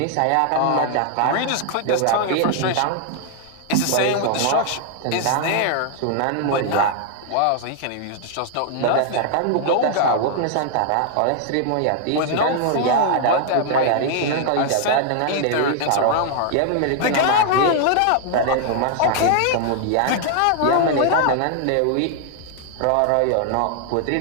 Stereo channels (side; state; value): both; different; correlation 0.00